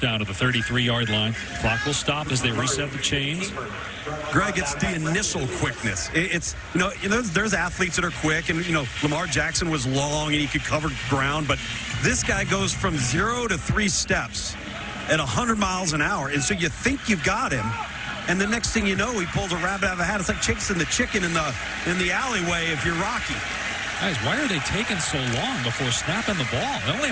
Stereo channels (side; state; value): both; identical; correlation 1.00